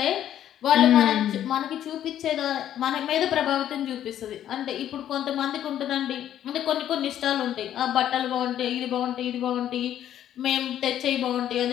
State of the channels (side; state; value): right; quieter; 11.1 dB